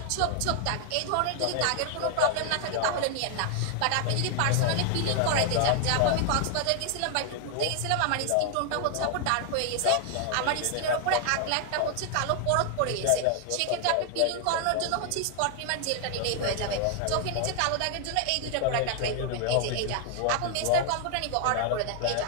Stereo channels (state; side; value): different; both; correlation 0.00